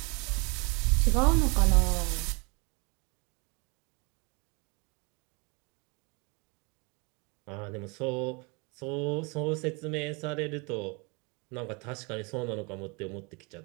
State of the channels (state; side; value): quieter; left; 30.2 dB